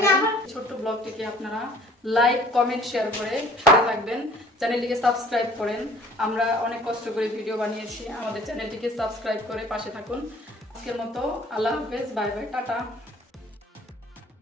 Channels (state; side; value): normal; both; correlation 0.53